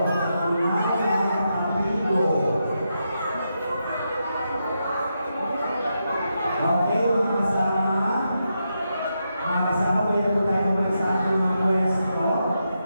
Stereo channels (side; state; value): both; inverted; correlation -0.85